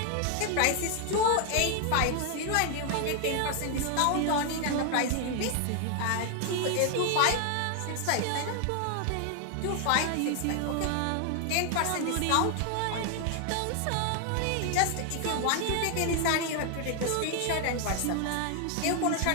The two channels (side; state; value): both; different; correlation 0.00